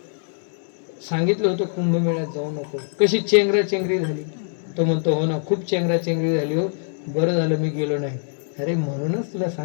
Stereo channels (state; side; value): silent; right; digital silence